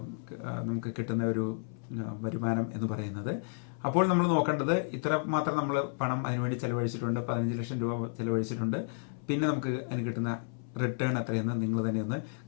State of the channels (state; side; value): silent; right; 56 dB below the other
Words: നമുക്ക് കിട്ടുന്ന ഒരു വരുമാനം എന്ന് പറയുന്നത്. അപ്പോൾ നമ്മൾ നോക്കേണ്ടത് ഇത്ര മാത്രം നമ്മൾ പണം അതിനുവേണ്ടി ചിലവഴിച്ചിട്ടുണ്ട്, 15 ലക്ഷം രൂപ ചിലവഴിച്ചിട്ടുണ്ട്. പിന്നെ നമുക്ക് അതിന് കിട്ടുന്ന റിട്ടേൺ എത്രയെന്ന് നിങ്ങൾ തന്നെ ഒന്ന്